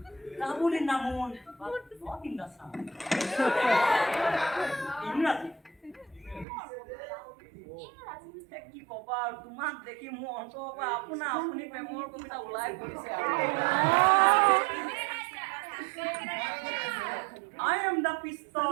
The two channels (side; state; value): left; drops out; at 6.5 s